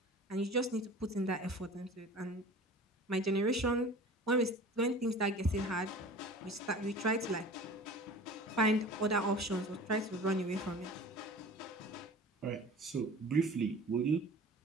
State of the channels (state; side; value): normal; both; correlation 0.41